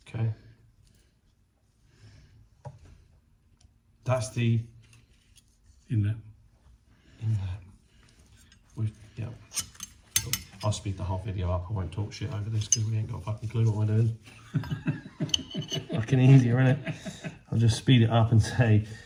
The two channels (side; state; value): both; identical; correlation 1.00